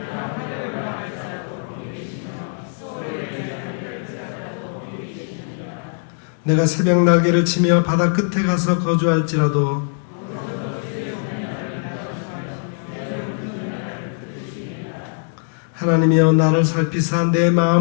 내가 새벽 날개를 치며 바다 끝에 가서 거주할지라도 하나님이여, 나를 살피사 내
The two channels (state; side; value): silent; right; digital silence